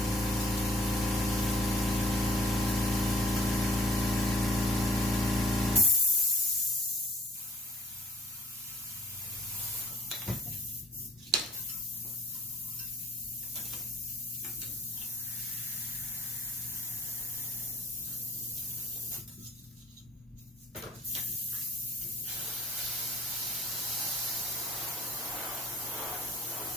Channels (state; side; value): normal; both; correlation 0.54